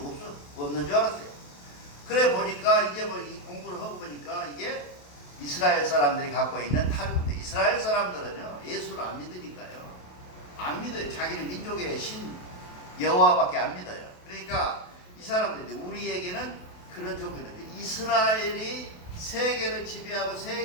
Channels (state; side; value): late; right; 28 ms